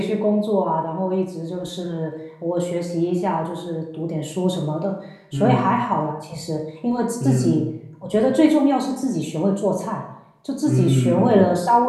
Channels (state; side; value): identical; both; correlation 1.00